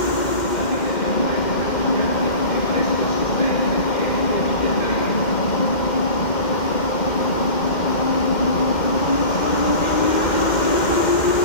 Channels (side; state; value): right; late; 2.1 ms